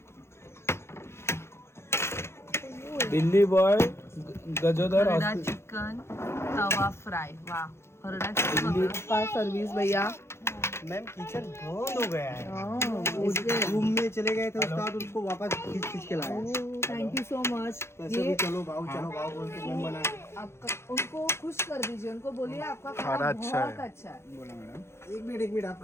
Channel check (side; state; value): right; late; 0.12 ms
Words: Delhi boy गजोदर Harda chicken तवा फ्राय. वा हरडा चिकन का सर्विस भैया. मैम किचन बंद हो गया है. रूम में चले गए थे उसके बाद उसको वापस खींच के लाया. Thank you so much. कैसे भी चलो भाव बोल के मैम बना. आपका उनको खुश कर दीजिए. उनको बोलिए आपका खाना खाना अच्छा है. बहुत अच्छा है. बोला मॅडम. एक मिनट